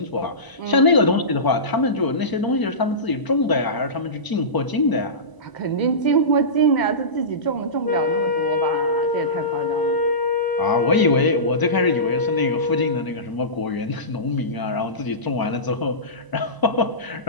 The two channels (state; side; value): late; right; 1.0 ms